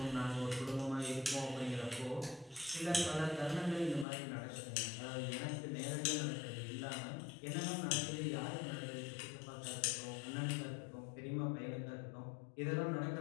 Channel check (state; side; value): drops out; right; at 4.0 s